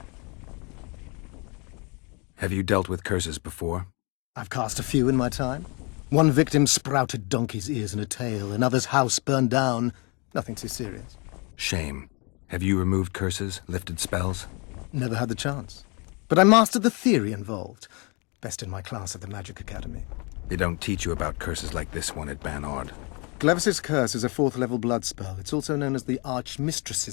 Have you dealt with curses before? I've cast a few in my time. One victim sprouted donkey's ears and a tail, another's house burned down. Nothing too serious. Shame. Have you removed curses, lifted spells? Never had the chance. But I mastered the theory involved. Best in my class at the Magic Academy. They don't teach you about curses like this one at Banord. Glevis's Curse is a 4th-level blood spell. It's also known as the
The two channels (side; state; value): right; quieter; 31.2 dB